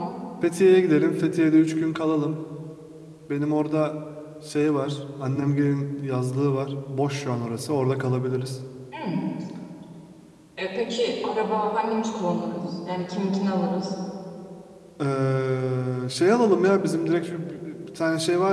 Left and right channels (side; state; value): both; identical; correlation 1.00